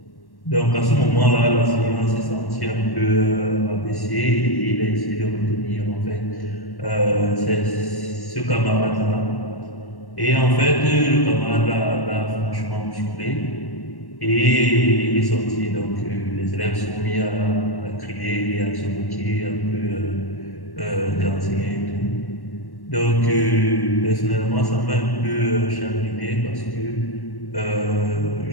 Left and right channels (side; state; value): right; late; 1.1 ms